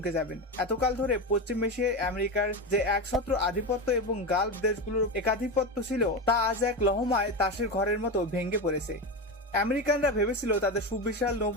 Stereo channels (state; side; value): normal; both; correlation 0.18